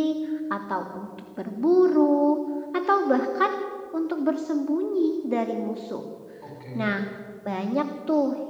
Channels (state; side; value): identical; both; correlation 1.00